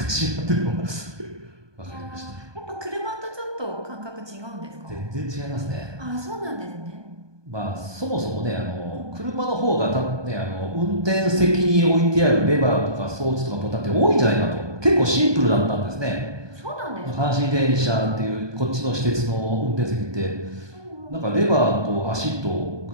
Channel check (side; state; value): left; late; 1.2 ms